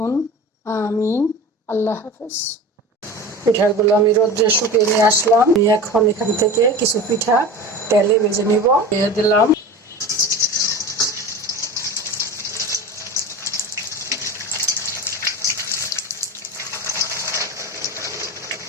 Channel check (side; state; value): both; normal; correlation 0.32